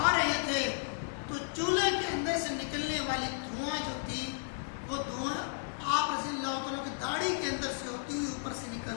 رہے تھے تو چولہے کے اندر سے نکلنے والی دھواں جو تھی وہ دھواں آپ رضی اللہ تعالیٰ کی داڑھی کے اندر سے ہوتی ہوئی اوپر سے نکل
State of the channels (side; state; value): right; silent; digital silence